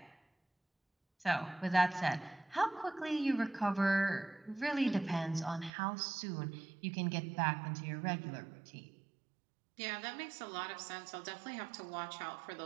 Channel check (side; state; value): left; drops out; at 5.7 s